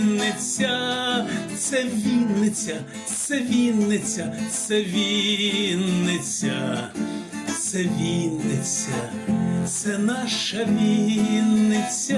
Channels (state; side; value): identical; both; correlation 1.00